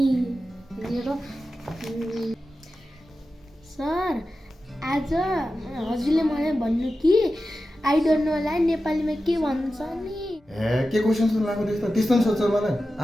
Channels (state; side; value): normal; both; correlation 0.93